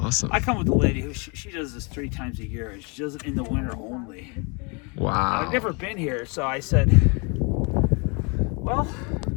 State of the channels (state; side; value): quieter; right; 32.1 dB